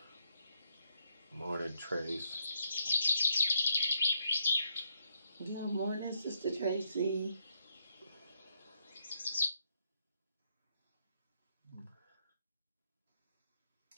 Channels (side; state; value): both; inverted; correlation -0.77